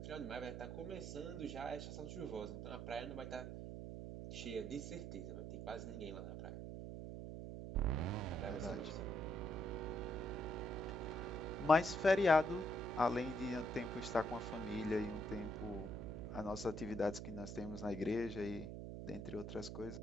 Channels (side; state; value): right; noise; hum, 7 dB below the sound